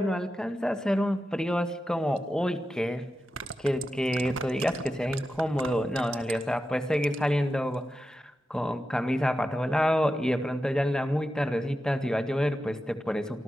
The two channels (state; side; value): normal; both; correlation 0.90